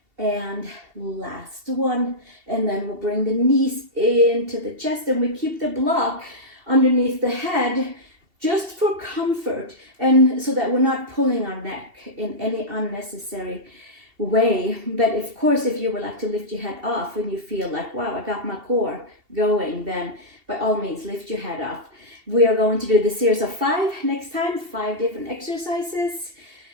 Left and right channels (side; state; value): left; late; 2.7 ms